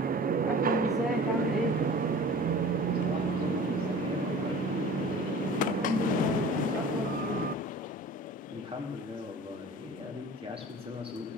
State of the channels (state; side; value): normal; both; correlation 0.42